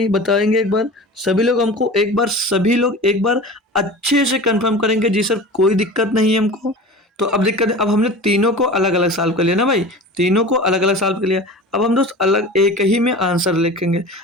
बताएंगे एक बार सभी लोग हमको, एक बार सभी लोग एक बार अच्छे से कंफर्म करेंगे जी सर कोई दिक्कत नहीं है हमको। तो अब दिक्कत है, अब हमने तीनों को अलग अलग सॉल्व कर लिया ना भाई, तीनों को अलग अलग सॉल्व कर लिया। अब हम दोस्त अलग एक ही में आंसर लिखेंगे।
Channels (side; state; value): both; normal; correlation 0.36